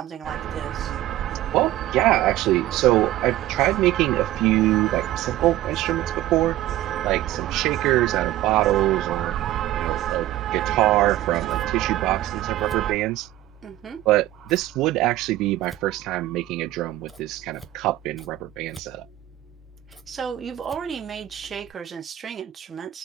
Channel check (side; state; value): left; quieter; 14.7 dB